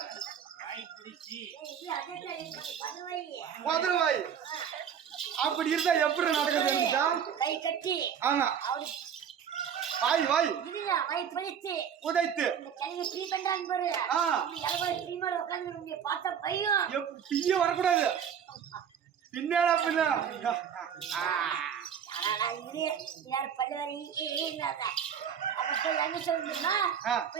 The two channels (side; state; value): left; quieter; 8.1 dB